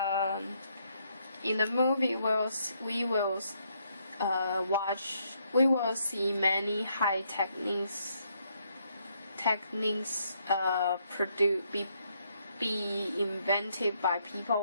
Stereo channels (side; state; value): both; inverted; correlation -0.73